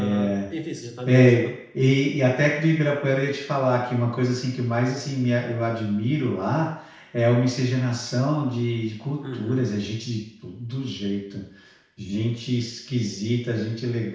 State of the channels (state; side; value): identical; both; correlation 1.00